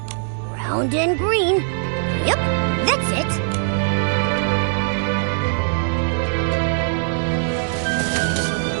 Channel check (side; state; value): left; silent; digital silence